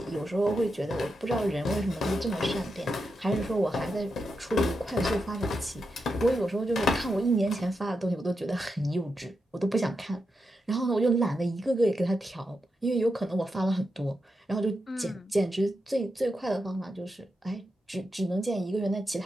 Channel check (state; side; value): normal; both; correlation 0.87